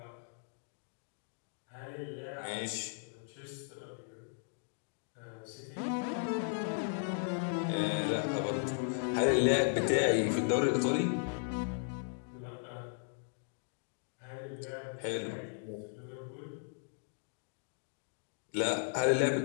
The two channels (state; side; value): silent; right; digital silence